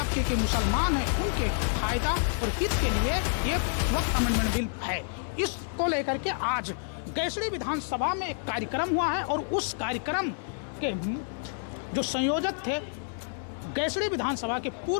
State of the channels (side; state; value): right; silent; 59 dB below the other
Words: के मुसलमान हैं, उनके फायदा और हित के लिए ये वक्त अमेंडमेंट बिल है। इसको लेकर के आज गैसड़ी विधानसभा में एक कार्यक्रम हुआ है और उस कार्यक्रम के जो संयोजक थे गैसड़ी विधानसभा के